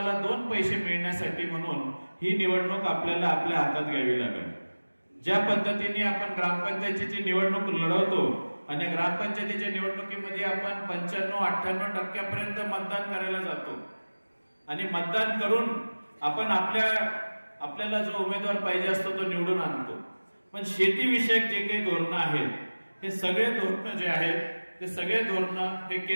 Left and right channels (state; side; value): inverted; both; correlation -1.00